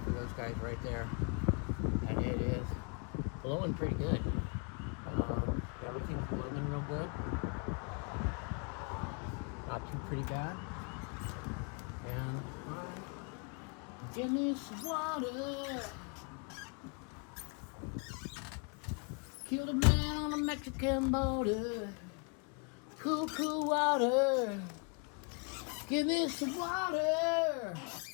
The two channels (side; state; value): right; quieter; 34.7 dB